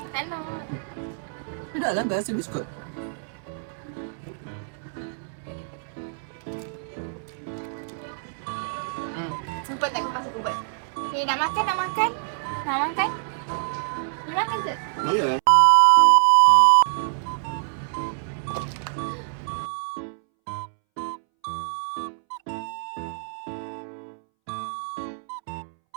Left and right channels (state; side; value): silent; left; 61 dB below the other